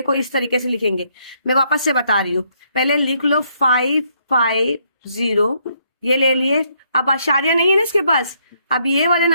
इस तरीके से लिखेंगे, मैं वापस से बता रही हूँ। पहले लिख लो 550, ये ले लिए। अब आशार्य नहीं है ना इसके पास। अब ये वाले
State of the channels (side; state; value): both; inverted; correlation -0.72